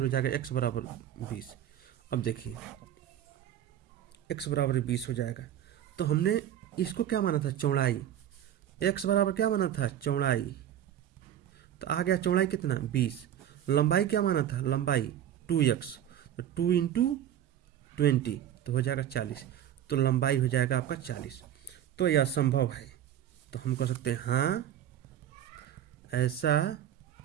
जाएगा x बराबर 20। अब देखिए x बराबर 20 हो जाएगा, तो हमने इसको क्या माना था चौड़ाई, x बराबर क्या माना था चौड़ाई, तो आ गया चौड़ाई कितना 20। लंबाई क्या माना था लंबाई 2x, तो 2 इंटू 20 तो हो जाएगा 40, तो लंबाई हो जाएगा आपका 40। तो यह संभव है, तो हम कह सकते हैं हाँ ऐसा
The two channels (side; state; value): left; quieter; 10.9 dB